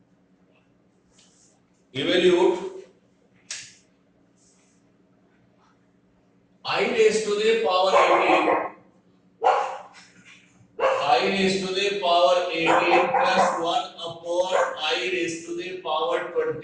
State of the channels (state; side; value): identical; both; correlation 1.00